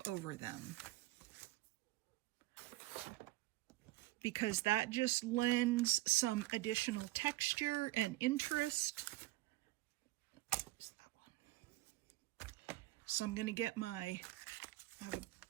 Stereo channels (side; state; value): left; quieter; 19.1 dB